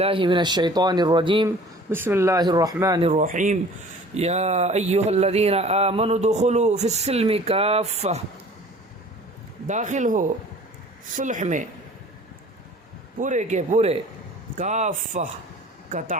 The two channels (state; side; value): normal; both; correlation 0.48